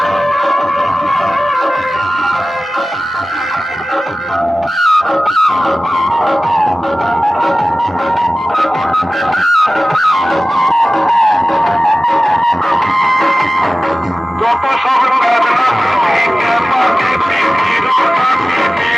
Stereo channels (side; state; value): both; normal; correlation 0.97